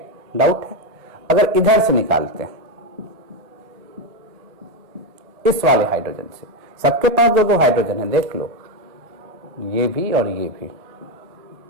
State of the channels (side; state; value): left; late; 1.5 ms